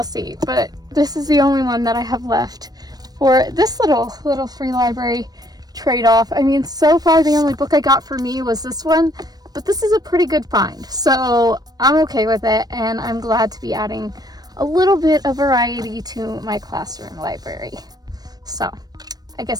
see. But this is the only one that I have left for this little free library trade-off. I mean, so far the only book I got for me was this one, but this is a pretty good find. So I'm okay with it, and I'm glad to be adding a little bit of variety to my classroom library. So I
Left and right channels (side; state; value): left; late; 0.19 ms